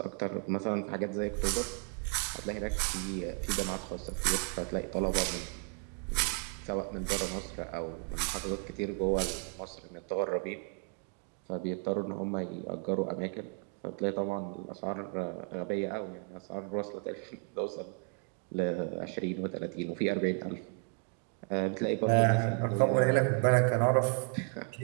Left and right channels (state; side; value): quieter; left; 39.6 dB